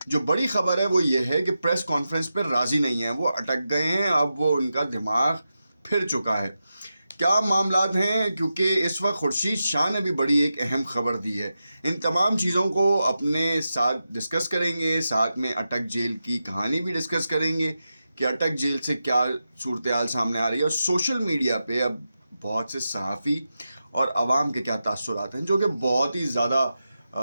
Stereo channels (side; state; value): both; inverted; correlation -0.90